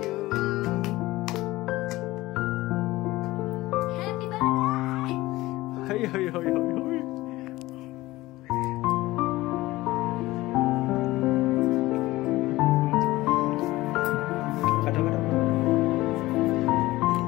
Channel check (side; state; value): right; quieter; 18.4 dB